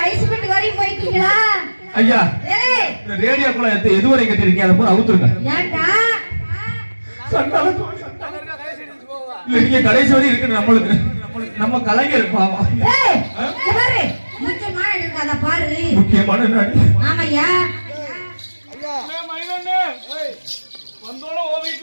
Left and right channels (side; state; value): both; inverted; correlation -1.00